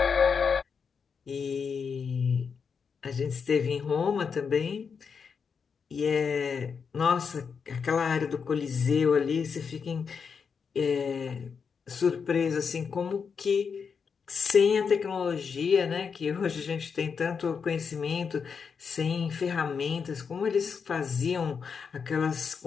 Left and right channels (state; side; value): quieter; right; 6.0 dB